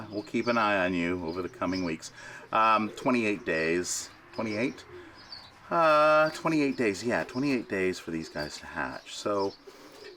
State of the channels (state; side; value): identical; both; correlation 1.00